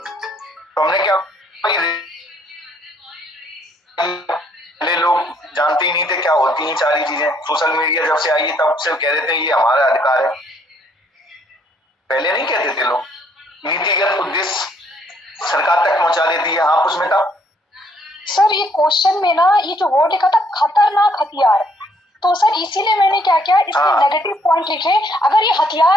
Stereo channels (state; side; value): normal; both; correlation 0.67